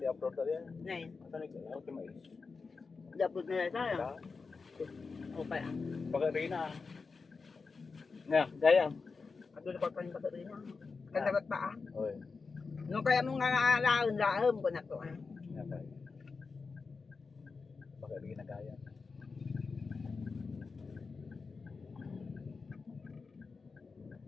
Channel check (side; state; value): right; quieter; 4.6 dB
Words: upload dali yan. Ngayon. Asa ni ako ti mais. Dapat na tayo. Da. Okay. Baga rin na. Nga, gaya. Ato na pa yung rin na. Kandapat pa ah. Oy. Nung kaya mong laon ko na to ah. Nga pa. Baga rin na gaya.